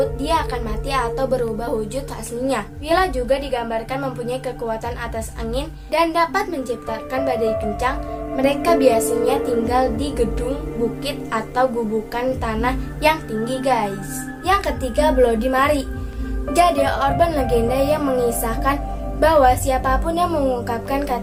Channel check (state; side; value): identical; both; correlation 1.00